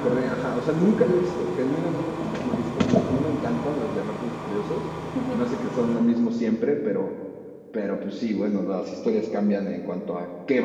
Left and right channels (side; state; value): both; identical; correlation 1.00